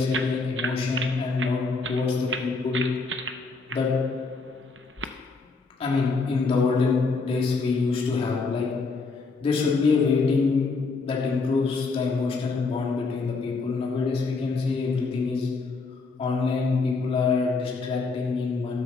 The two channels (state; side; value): quieter; right; 4.1 dB